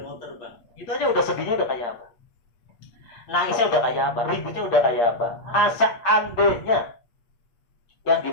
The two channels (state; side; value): late; right; 8.6 ms